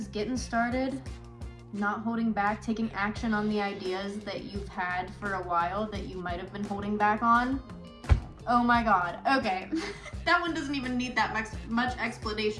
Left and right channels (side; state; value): both; identical; correlation 1.00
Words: getting started, not holding back, taking action on the ideas that you've had for a while that you might have been holding back on. Oh my god, okay. That one doesn't even need that much